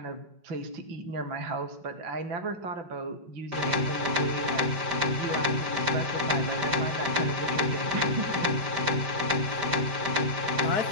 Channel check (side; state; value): left; late; 5.1 ms